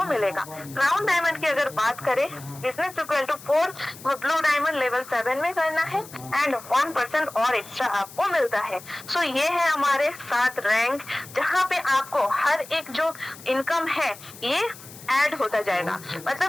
मिलेगा। क्राउन डायमंड की अगर बात करें business equal to 4 blue diamond level 7 में करना है एंड 1% और एक्स्ट्रा आपको मिलता है। सो ये है हमारे 7 रैंक जहाँ पे आपको हर एक जो इनकम है ये ऐड होता जाएगा।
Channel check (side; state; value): left; noise; hiss, 18 dB below the sound